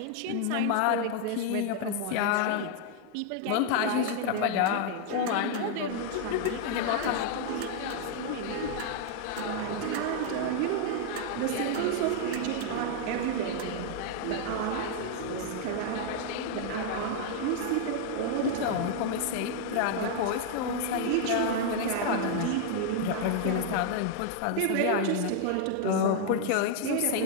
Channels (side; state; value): both; different; correlation 0.00